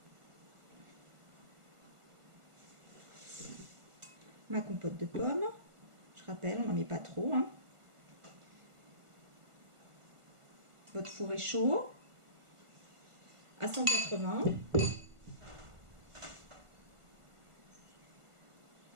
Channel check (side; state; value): left; late; 1.4 ms